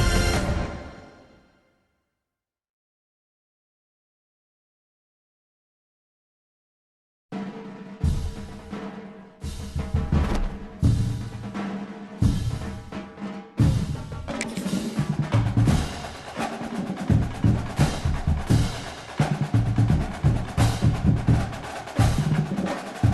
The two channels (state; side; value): identical; both; correlation 1.00